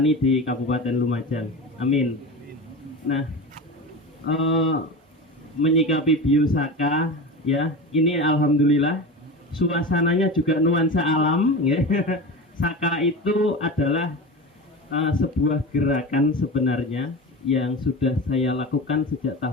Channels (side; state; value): both; normal; correlation 0.27